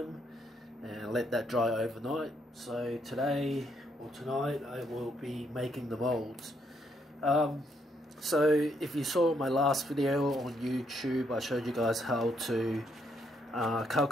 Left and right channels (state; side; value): normal; both; correlation 0.74